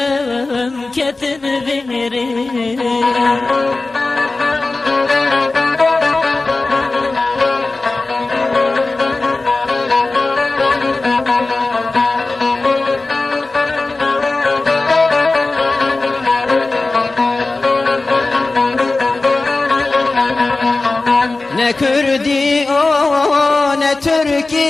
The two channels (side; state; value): right; quieter; 3.4 dB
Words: كتنبير كردي او نه